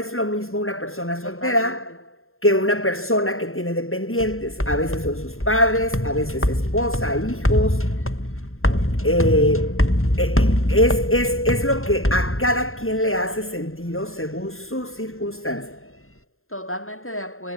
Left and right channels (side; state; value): right; late; 0.61 ms